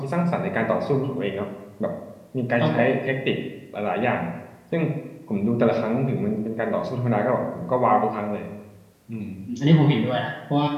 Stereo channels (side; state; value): both; identical; correlation 1.00